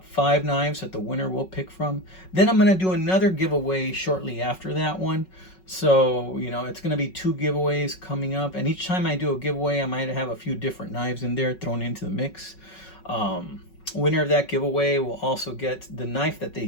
5 knives that the winner will pick from. Then I'm going to do another giveaway shortly after that one. So, you know, it's going to be 2 giveaways coming up. And each time I do a giveaway, I might have a few different knives in there thrown into the mix. Winner of that giveaway will also get the knife that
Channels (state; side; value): late; right; 5.4 ms